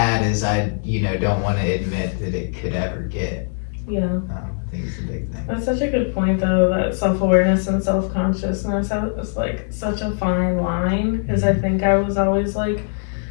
as I, don't want to admit that it could ever get. Yeah. I think it's a big thing. That's such a good point, though, that self awareness and self consciousness is like such a fine line. Because I think I was always like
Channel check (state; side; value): silent; right; 63 dB below the other